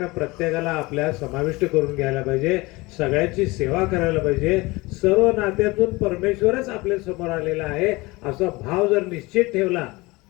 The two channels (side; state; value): right; quieter; 22.8 dB